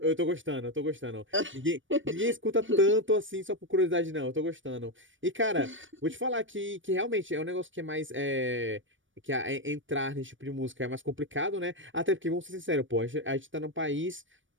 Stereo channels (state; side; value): late; left; 0.56 ms